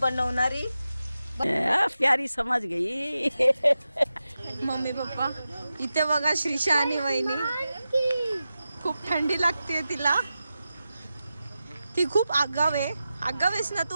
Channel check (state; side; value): inverted; both; correlation -0.92